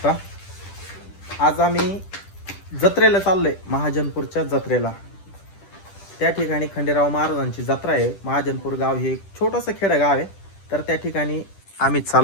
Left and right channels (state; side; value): late; right; 10 ms